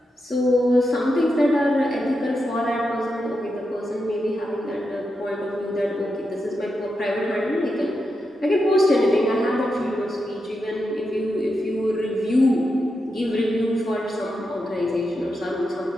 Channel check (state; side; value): normal; both; correlation 0.87